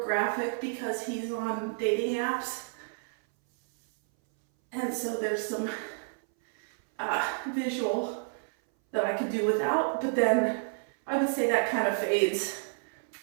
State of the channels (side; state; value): left; silent; 58 dB below the other